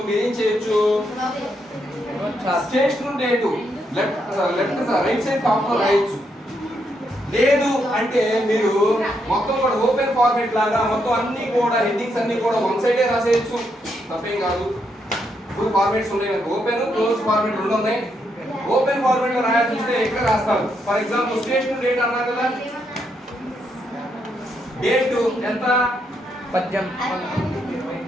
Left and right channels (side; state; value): both; normal; correlation 0.78